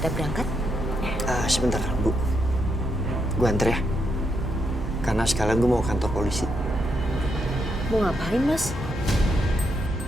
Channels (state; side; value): normal; both; correlation 0.79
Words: berangkat. Sebentar, Bu. Gue anter ya. Karena sekalian gue mau ke kantor polisi. Mau ngapain, Mas?